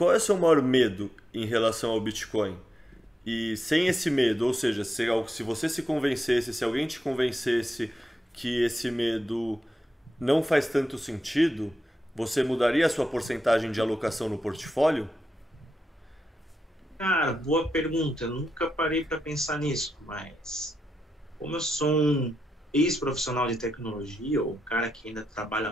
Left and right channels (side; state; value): both; normal; correlation 0.86